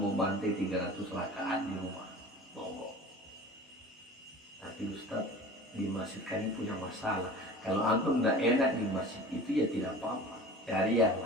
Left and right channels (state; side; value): normal; both; correlation 0.40